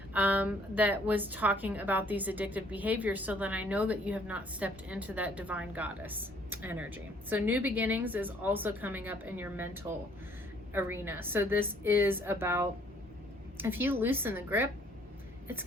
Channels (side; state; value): both; normal; correlation 0.61